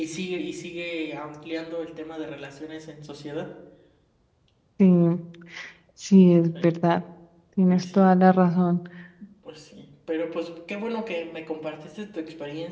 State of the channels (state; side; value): identical; both; correlation 1.00